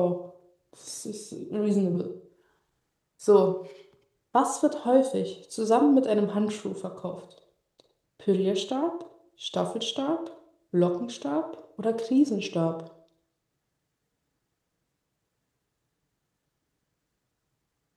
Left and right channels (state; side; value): identical; both; correlation 1.00